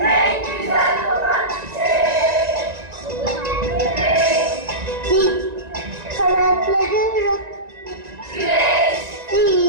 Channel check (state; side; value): late; left; 1.9 ms